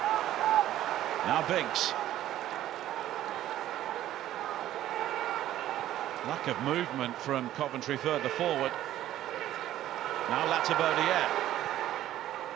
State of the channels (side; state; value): left; quieter; 13.2 dB